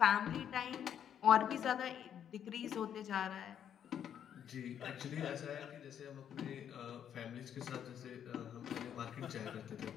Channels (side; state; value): right; quieter; 9.2 dB